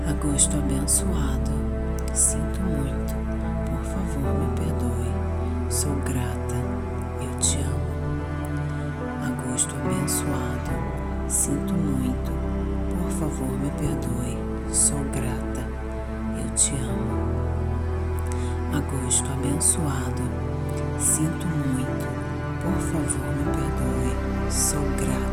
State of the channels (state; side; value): identical; both; correlation 1.00